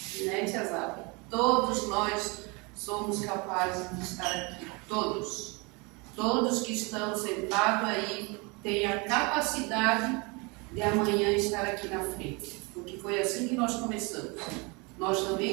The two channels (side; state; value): left; quieter; 28.8 dB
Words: né, Tia Zaba? Todos nós somos capazes de estar aqui, todos. Todos que estão sentados aí têm a capacidade de amanhã estar aqui na frente. Porque foi assim que nós começamos. Nós